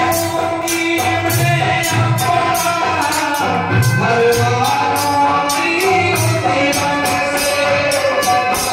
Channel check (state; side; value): identical; both; correlation 1.00